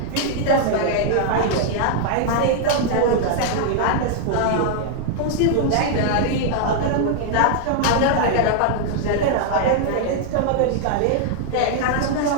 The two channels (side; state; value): both; different; correlation 0.00